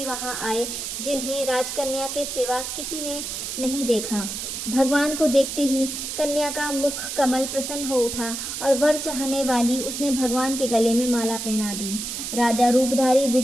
वहां आए, जिन्हें राजकन्या के सिवा किसी ने नहीं देखा। भगवान को देखते ही कन्या का मुख कमल प्रसन्न हो उठा और वर चाहने वाली उसने भगवान के गले में माला पहना दी। राजा रूपधारी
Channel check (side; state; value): right; noise; hiss, 5 dB below the sound